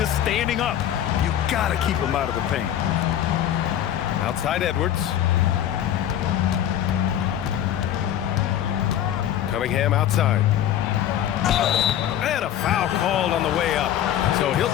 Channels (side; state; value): right; quieter; 11.0 dB